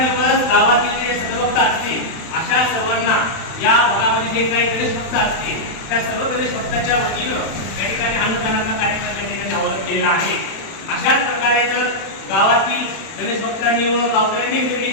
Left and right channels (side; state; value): right; late; 31 ms